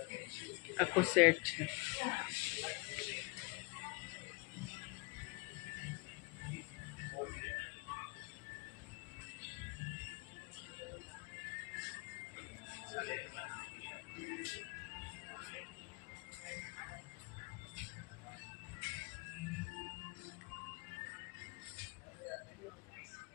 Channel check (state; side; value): quieter; right; 28.3 dB